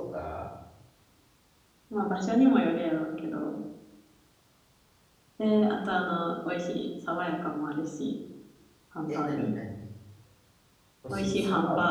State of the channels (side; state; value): both; identical; correlation 1.00